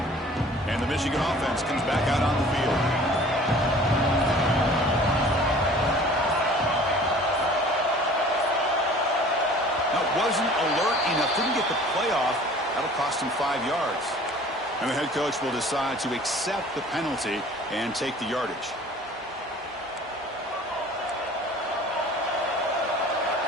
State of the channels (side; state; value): both; normal; correlation 0.48